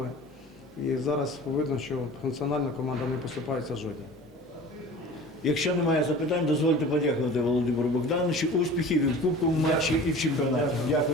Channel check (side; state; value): both; normal; correlation 0.41